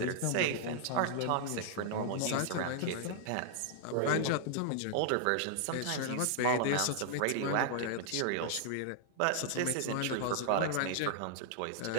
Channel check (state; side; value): different; both; correlation -0.01